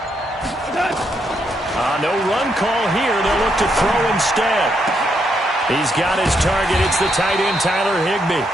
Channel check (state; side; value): normal; both; correlation 0.78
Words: No run call here. They'll look to throw instead. He's got his target. It's the tight end, Tyler Higbee.